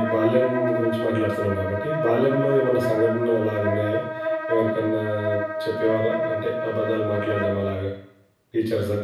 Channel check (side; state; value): both; identical; correlation 1.00